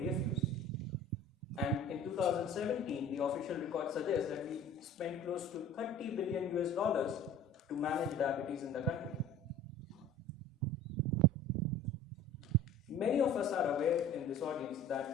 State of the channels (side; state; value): both; normal; correlation 0.44